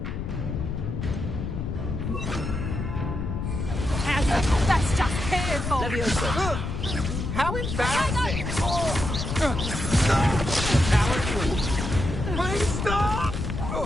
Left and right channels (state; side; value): noise; left; rumble, 4 dB below the sound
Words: That's just careful! Levioso. How embarrassing! Please stop!